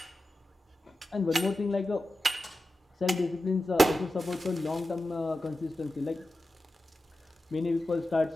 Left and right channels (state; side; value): normal; both; correlation 0.92